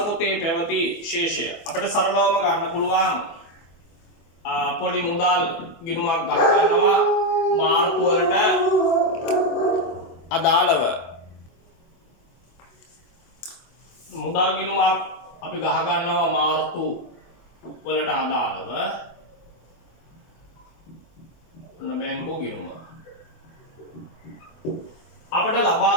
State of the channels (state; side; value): late; right; 24 ms